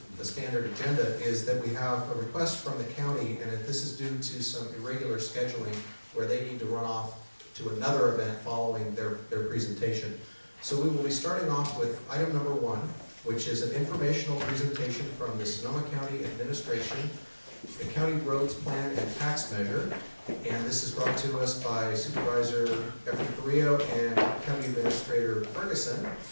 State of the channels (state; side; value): inverted; both; correlation -1.00